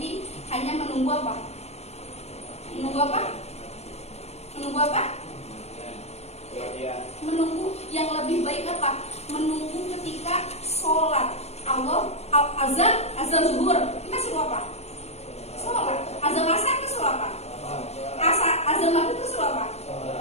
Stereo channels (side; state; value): right; late; 0.31 ms